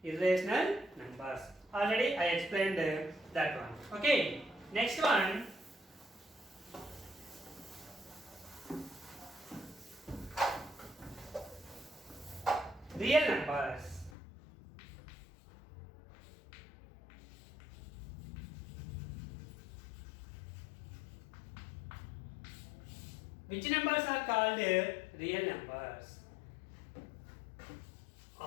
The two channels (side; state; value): right; drops out; at 14.1 s